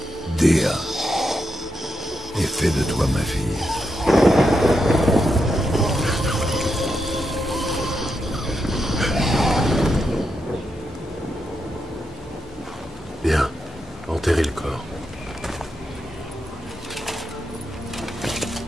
Dea, et fais de toi ma fille. Bien, enterrez le corps.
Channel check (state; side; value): normal; both; correlation 0.84